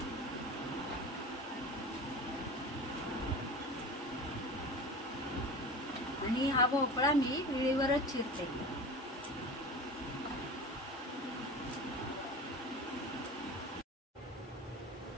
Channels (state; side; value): normal; both; correlation 0.32